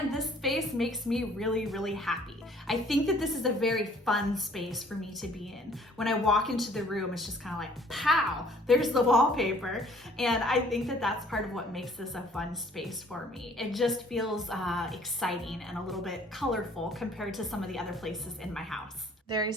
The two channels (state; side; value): normal; both; correlation 0.57